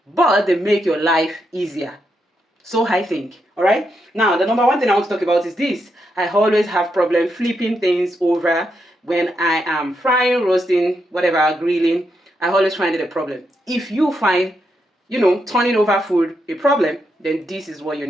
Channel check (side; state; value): both; normal; correlation 0.82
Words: but they make your life easier. So I think. All right. Now, the number one thing I want to talk about is this. I always have problem flipping things over when I am frying, roasting, whatever, grilling. I always find it a problem. If you find, turning over food a problem, then this is what you